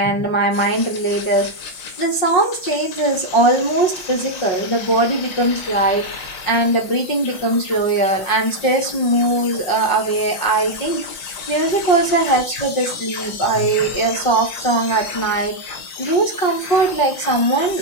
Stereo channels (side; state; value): right; late; 5.5 ms